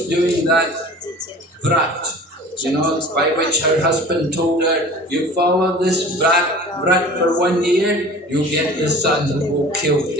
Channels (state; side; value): normal; both; correlation 0.42